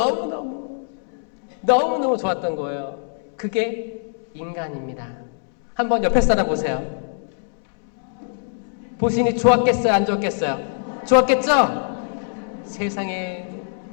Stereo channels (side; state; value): right; silent; 64 dB below the other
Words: 좋았던 거예요. 그게 인간입니다. 한번 옆에 사람 보세요. 보시니 좋았겠어요? 안 좋았겠어요? 좋았겠죠? 세상에